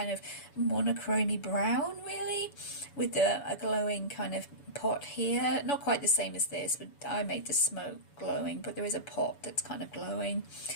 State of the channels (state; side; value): late; right; 6.9 ms